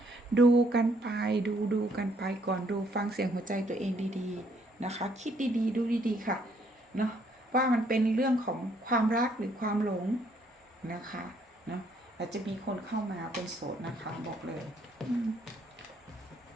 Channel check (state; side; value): normal; both; correlation 0.68